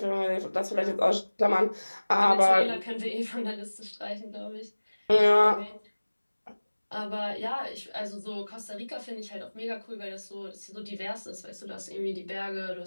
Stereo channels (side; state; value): both; inverted; correlation -1.00